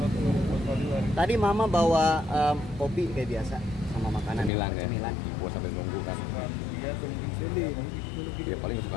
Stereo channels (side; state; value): right; drops out; at 4.5 s